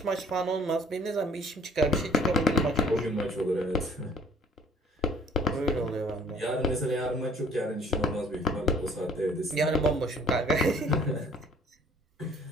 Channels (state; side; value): normal; both; correlation 0.57